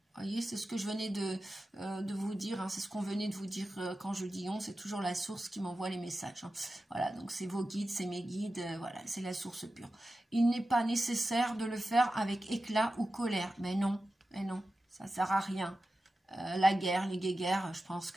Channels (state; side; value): normal; both; correlation 0.93